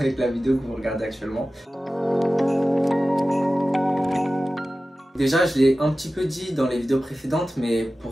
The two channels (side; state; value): both; normal; correlation 0.95